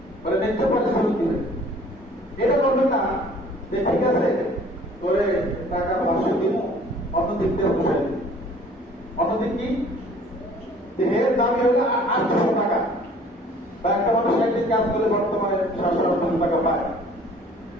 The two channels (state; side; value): normal; both; correlation 0.52